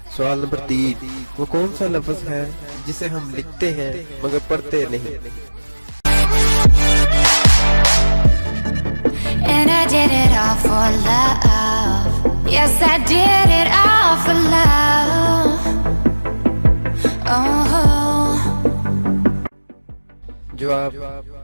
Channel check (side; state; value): both; inverted; correlation -1.00